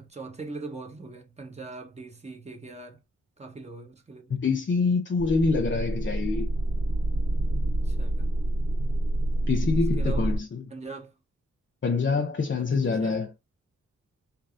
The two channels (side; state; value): both; normal; correlation 0.74